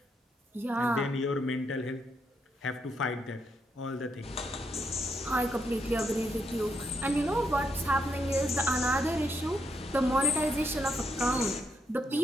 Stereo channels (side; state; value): both; normal; correlation 0.78